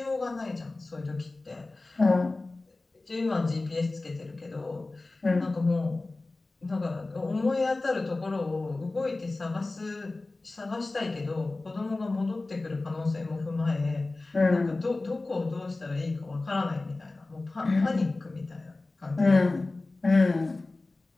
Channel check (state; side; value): quieter; right; 3.2 dB